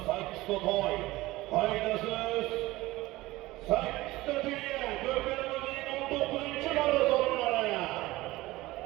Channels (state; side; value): quieter; left; 18.8 dB